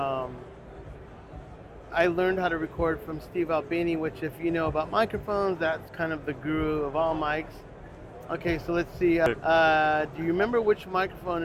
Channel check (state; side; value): identical; both; correlation 1.00